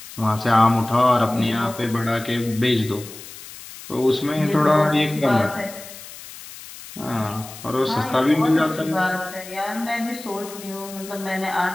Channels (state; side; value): noise; left; hiss, 15 dB below the sound